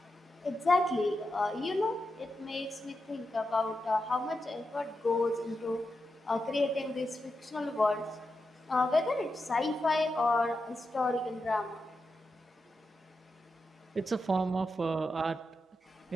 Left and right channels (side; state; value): both; normal; correlation 0.88